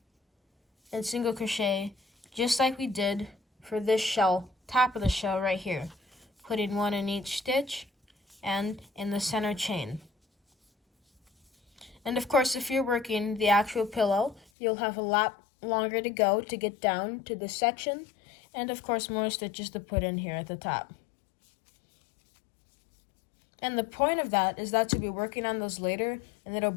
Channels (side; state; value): right; drops out; at 14.5 s